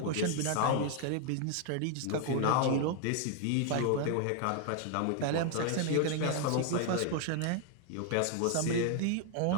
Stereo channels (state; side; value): different; both; correlation 0.00